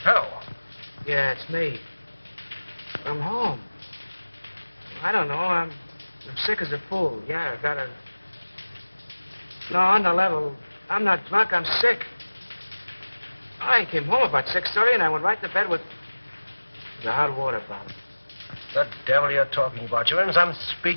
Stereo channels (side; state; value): both; inverted; correlation -1.00